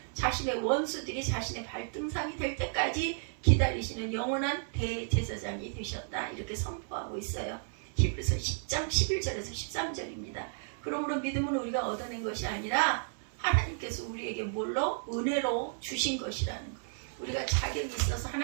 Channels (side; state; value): left; silent; 56 dB below the other